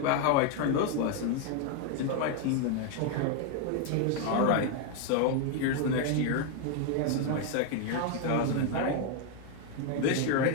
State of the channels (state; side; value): different; both; correlation 0.01